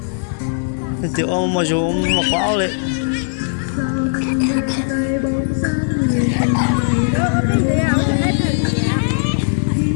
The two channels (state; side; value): silent; right; digital silence